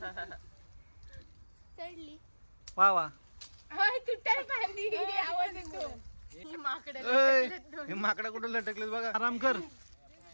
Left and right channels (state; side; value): inverted; both; correlation -1.00